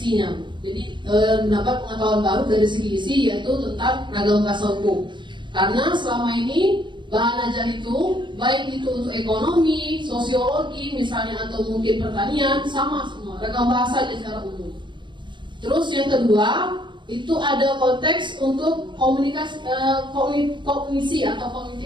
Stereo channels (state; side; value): late; left; 0.23 ms